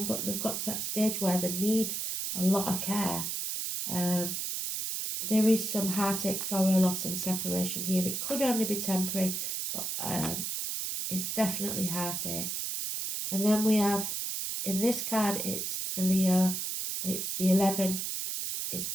but they've got to that stage where they need a lot of care. There is some heartache, sorrow, loss and separation here. It could only be temporary, but it's definitely heartache. And then we have, in this card, it's the Leo, it's the 11, it's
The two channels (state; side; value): noise; right; hiss, 2 dB below the sound